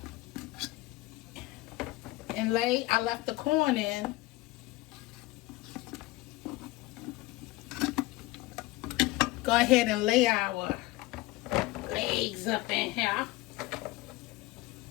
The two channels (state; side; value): quieter; right; 19.7 dB